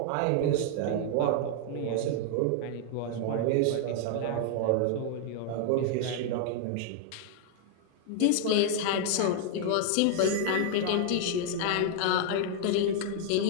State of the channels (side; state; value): both; different; correlation 0.00